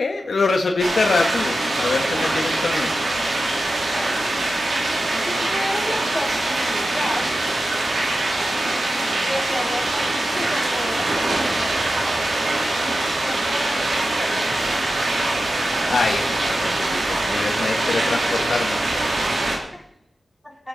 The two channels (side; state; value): both; normal; correlation 0.92